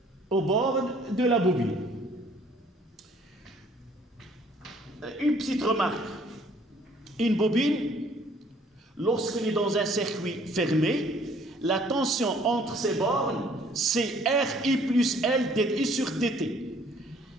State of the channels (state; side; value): normal; both; correlation 0.59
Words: au bord de la bobine? Une petite remarque. Une bobine, lorsqu'elle est dans un circuit fermé, la tension entre ses bornes, c'est RI plus L dI sur dt.